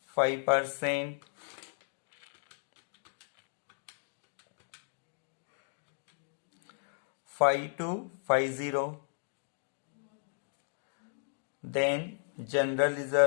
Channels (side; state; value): right; silent; digital silence